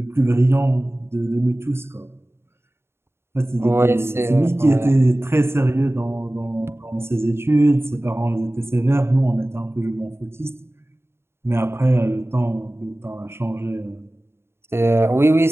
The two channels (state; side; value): late; left; 0.12 ms